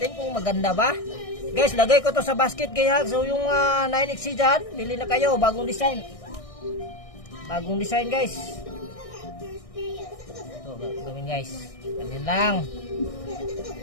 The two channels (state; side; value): late; right; 1.6 ms